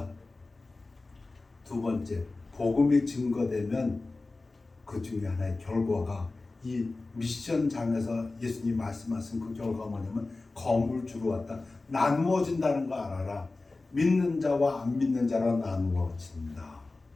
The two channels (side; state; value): right; quieter; 3.4 dB